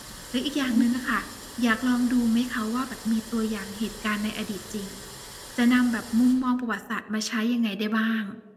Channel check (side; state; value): both; identical; correlation 1.00